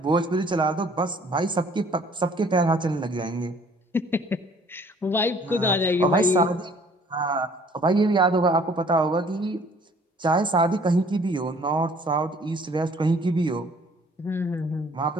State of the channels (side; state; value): both; normal; correlation 0.56